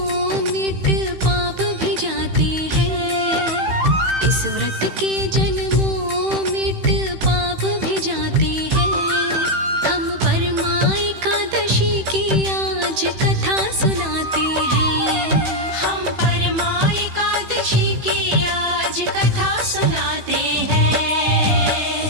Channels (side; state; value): left; late; 15 ms